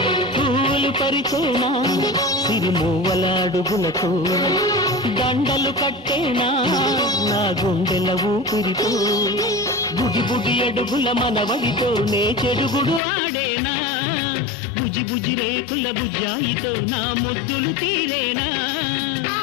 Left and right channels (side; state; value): right; drops out; at 13.0 s